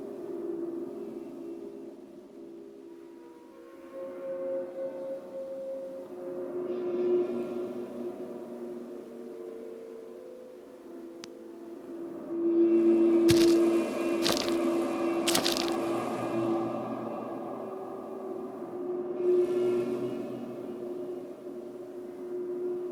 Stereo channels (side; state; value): both; identical; correlation 1.00